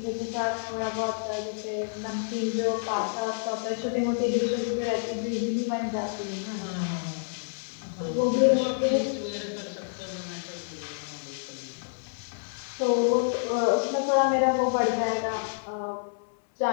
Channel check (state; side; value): silent; right; 59 dB below the other